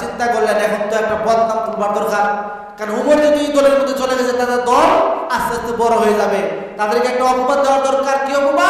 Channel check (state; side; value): identical; both; correlation 1.00